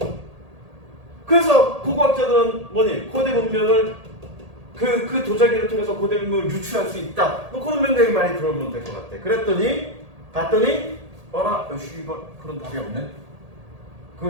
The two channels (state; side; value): late; left; 1.8 ms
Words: 그래서 고고학자들은 뭐니? 고대 문명을 그 도자기를 통해서 고대 문명을 유추할 수 있다. 뭐 그런 명령이 많이 들어오면 될 것 같아. 그랬더니 봤더니 어라 씨발 그런 답이 없네. 그